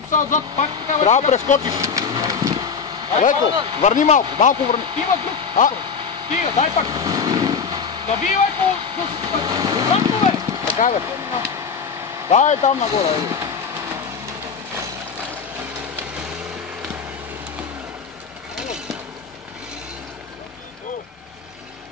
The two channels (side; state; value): right; quieter; 5.9 dB